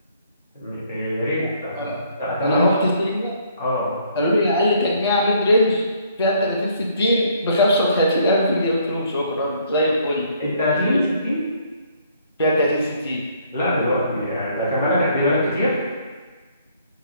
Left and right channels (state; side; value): inverted; both; correlation -0.64